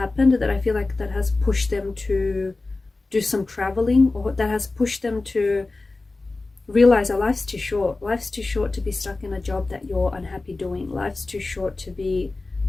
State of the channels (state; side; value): quieter; right; 3.4 dB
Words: that I feel like that has pushed them to do some traveling, or that has pushed them to realize that life's too short. Life's too short to be stuck in a job that you're unhappy doing. Life's too short to be